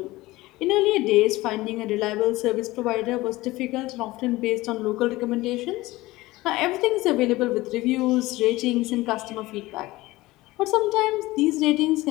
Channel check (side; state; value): right; quieter; 19.1 dB